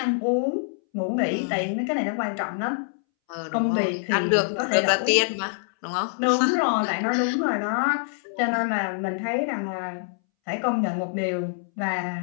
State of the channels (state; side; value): silent; right; 62 dB below the other